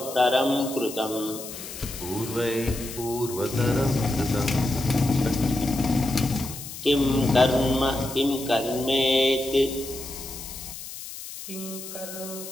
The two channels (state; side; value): noise; left; hiss, 11 dB below the sound